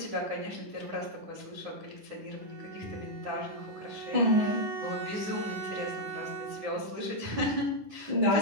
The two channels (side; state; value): left; late; 10 ms